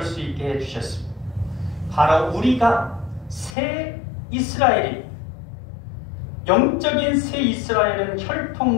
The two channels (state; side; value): drops out; right; at 3.6 s